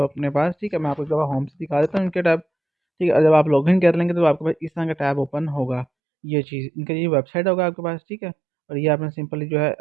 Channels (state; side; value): drops out; left; at 5.9 s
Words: अपने पास, ठीक है। मैं आपको एक दफ़ा होम से दिखा देता हूँ इनके टैब, ठीक है। जब आप लॉगिन कर लेंगे तो आपके पास इस तरह का टैब ओपन होगा। ये चीज़ इनका ये वेबसाइट होगा आपके पास, ठीक है। और ये आपने सिंपली जो है